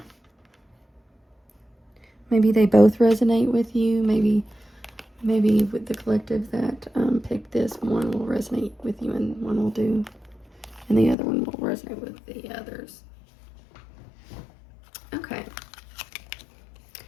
maybe they both resonate with you. Maybe with the collective that picked this, one will resonate with you and one will do, and the other one will resonate with the others. Okay.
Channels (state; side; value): drops out; right; at 11.2 s